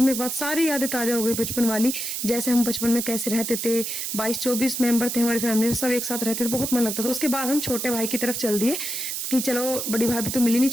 के बाद सारी यादें ताजा हो गई बचपन वाली, जैसे हम बचपन में कैसे रहते थे। 22-24 मेंबर थे हमारी फैमिली में, सब एक साथ रहते थे, बहुत मन लगता था। उसके बाद हम छोटे भाई की तरफ चल दिए कि चलो बड़ी भाभी तो मिली नहीं,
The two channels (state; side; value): noise; right; hiss, 3 dB below the sound